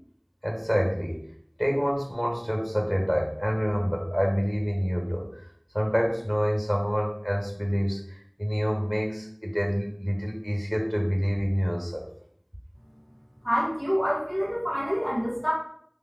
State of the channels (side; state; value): both; identical; correlation 1.00